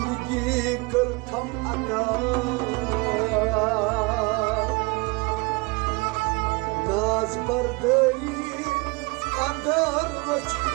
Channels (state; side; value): quieter; left; 27.0 dB